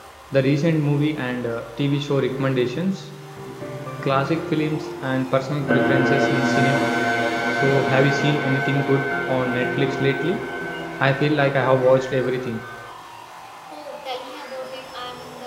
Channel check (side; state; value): both; identical; correlation 1.00